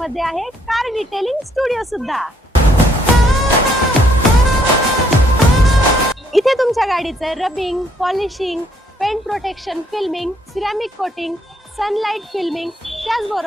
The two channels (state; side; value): normal; both; correlation 0.68